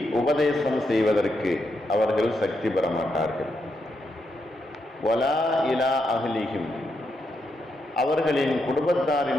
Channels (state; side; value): normal; both; correlation 0.82